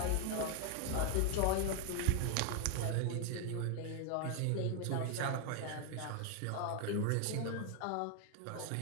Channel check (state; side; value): different; both; correlation 0.01